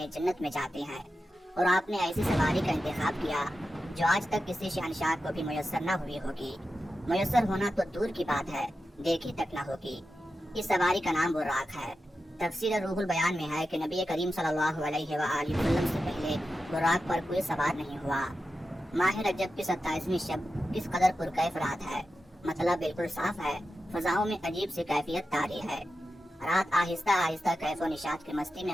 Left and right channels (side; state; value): both; normal; correlation 0.91